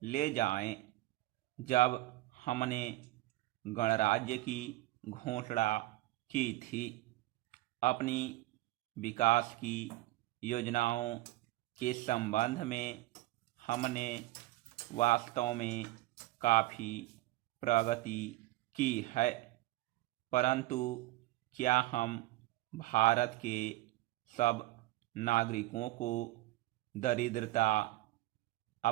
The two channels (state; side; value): quieter; left; 18.4 dB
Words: ले जाएं जब हमने गणराज्य की घोषणा की थी। अपनी विकास की योजनाओं के संबंध में हमने वास्तव में काफ़ी प्रगति की है, परंतु क्या हम भारत के सब नागरिकों को दरिद्रता,